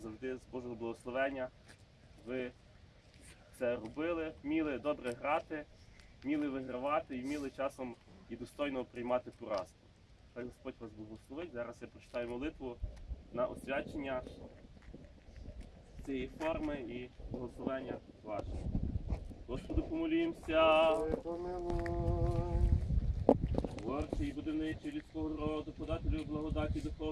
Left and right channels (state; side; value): identical; both; correlation 1.00